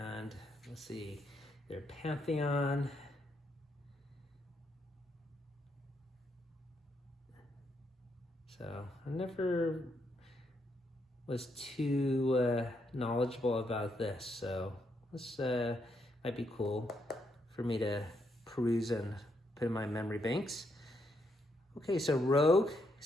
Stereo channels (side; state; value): both; normal; correlation 0.78